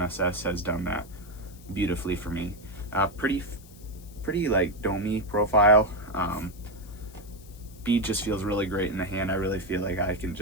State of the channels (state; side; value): noise; left; hiss, 23 dB below the sound